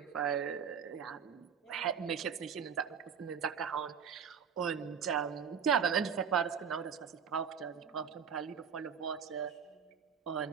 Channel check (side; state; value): left; quieter; 7.1 dB